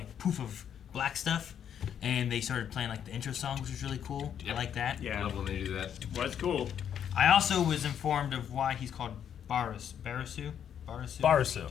poof of black stuff, and they started playing like the intro song, which was really cool. I Yep. like that. I Yeah. love when they do that. Was cool. I also was informed of why he's called Barasu. Barasu.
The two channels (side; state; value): right; quieter; 8.9 dB